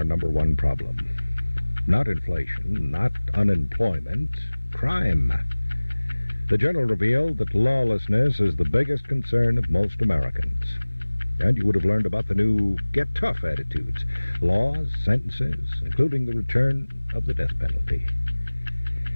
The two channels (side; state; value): both; inverted; correlation -1.00